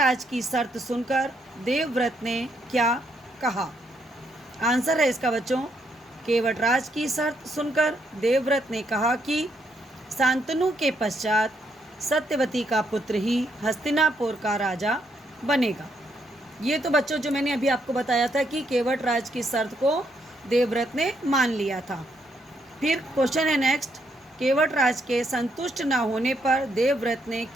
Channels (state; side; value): normal; both; correlation 0.75